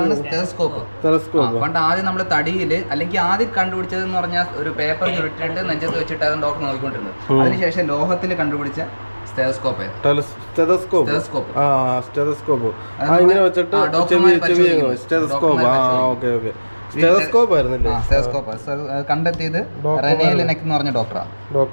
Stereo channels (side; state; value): both; inverted; correlation -1.00